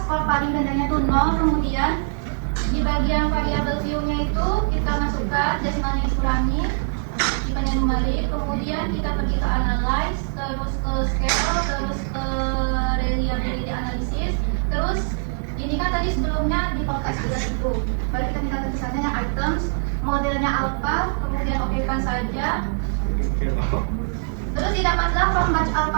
skor paling rendahnya itu 0, kemudian di bagian variabel view-nya itu kita masukkan desimalnya dikurangi, dipandang kembali, kemudian kita pergi ke analyze, terus ke scale, terus ke reliability analysis, terus ini kan tadi sebelumnya di podcast juga itu, baru kita minta tulisannya yang items, modelnya alpha, kemudian okekan saja. Terus didapatlah from batch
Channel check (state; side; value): silent; left; 64 dB below the other